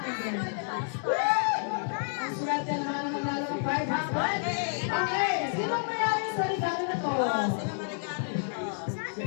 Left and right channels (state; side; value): silent; right; 58 dB below the other